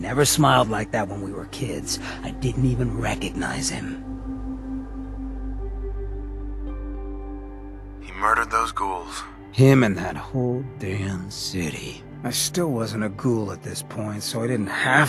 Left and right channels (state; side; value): identical; both; correlation 1.00